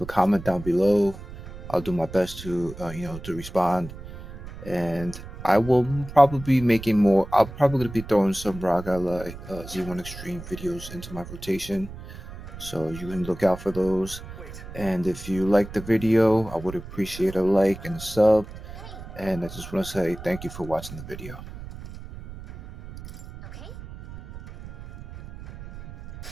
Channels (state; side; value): noise; right; rumble, 13 dB below the sound